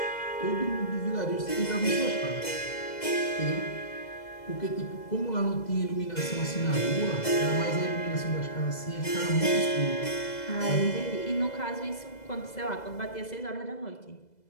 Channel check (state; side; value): late; right; 2.0 ms